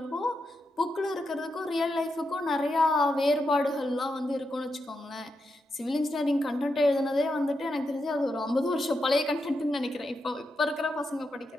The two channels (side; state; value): both; normal; correlation 0.85